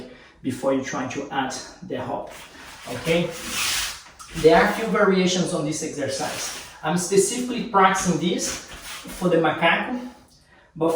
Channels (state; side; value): identical; both; correlation 1.00